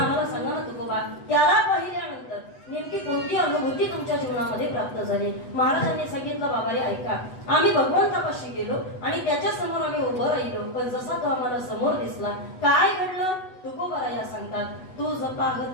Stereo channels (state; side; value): late; right; 8.1 ms